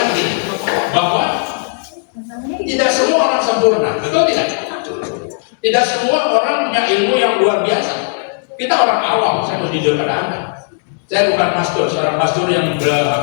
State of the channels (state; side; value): silent; right; digital silence